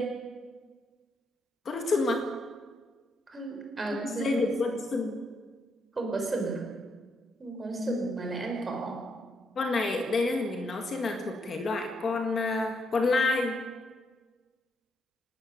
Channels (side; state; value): both; normal; correlation 0.77